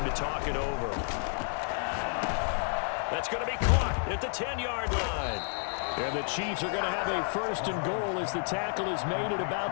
to talk it over. That's going to be caught at the 10-yard line. And the Chiefs are going to have a 1st and goal as the tackle is made at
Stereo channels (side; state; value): right; silent; 56 dB below the other